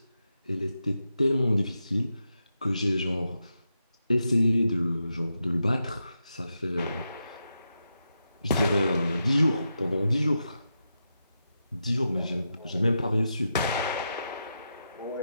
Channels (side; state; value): both; inverted; correlation -0.87